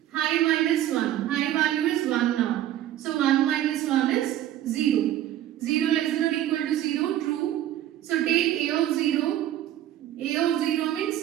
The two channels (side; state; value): left; quieter; 12.5 dB